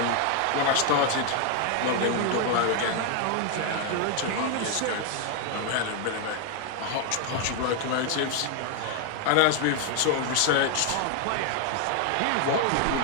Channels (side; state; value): both; different; correlation 0.01